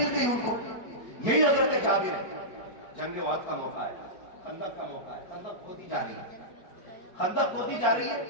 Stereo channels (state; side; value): late; right; 5.1 ms